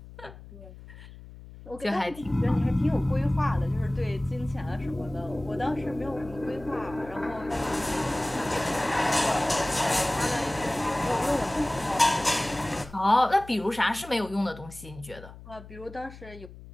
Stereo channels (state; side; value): noise; left; hum, 17 dB below the sound